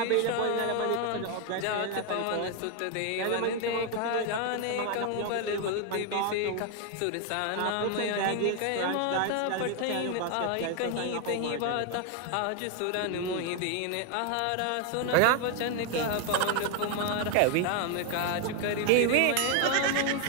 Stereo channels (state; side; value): different; both; correlation 0.01